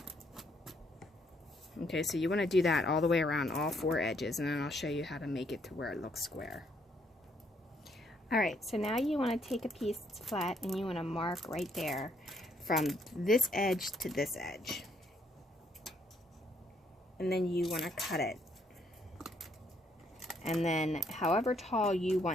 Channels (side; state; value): both; normal; correlation 0.71